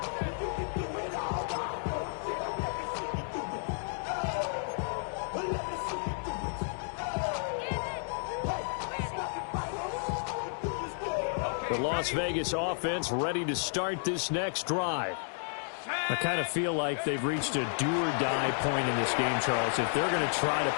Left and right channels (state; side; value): silent; right; digital silence